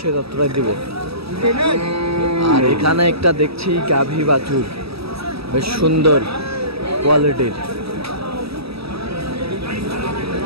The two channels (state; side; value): late; left; 0.77 ms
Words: তথ্যটাই দিব। আর এখানে একটা দেখছি গাভী বাছুর বেশ সুন্দর কোয়ালিটির